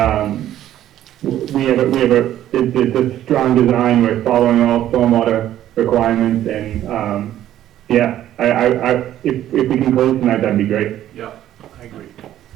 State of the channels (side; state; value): left; quieter; 12.3 dB